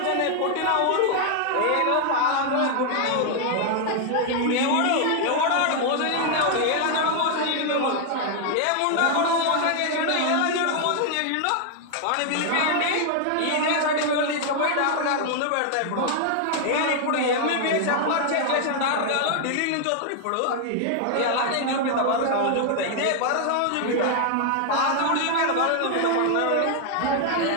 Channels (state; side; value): different; both; correlation 0.00